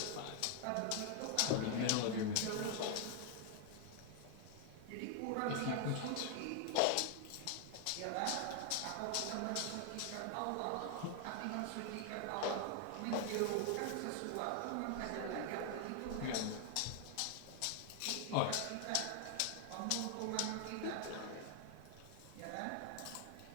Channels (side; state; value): both; different; correlation 0.00